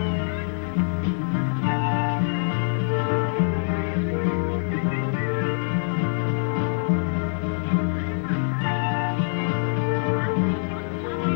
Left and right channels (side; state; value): right; silent; digital silence